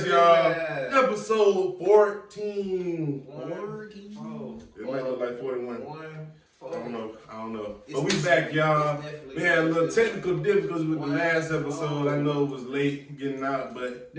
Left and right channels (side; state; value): both; identical; correlation 1.00